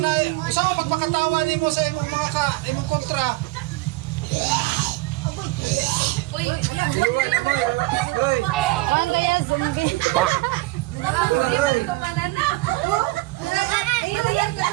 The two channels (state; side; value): quieter; left; 20.6 dB